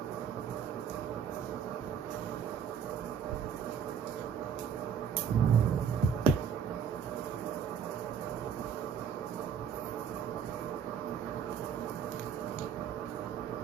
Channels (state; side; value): quieter; left; 7.4 dB